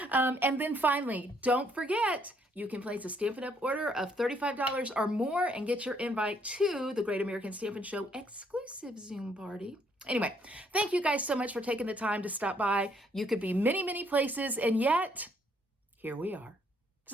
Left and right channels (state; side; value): normal; both; correlation 0.68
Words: And then finally, don't forget, you can place a Stampin' Up! Order of $35 or more and get your invite to the Great American Stampin' Show exclusive Zoom party. Anyway, thank you guys so much for taking the time to stop by. You could be many, many places, and yet here we are.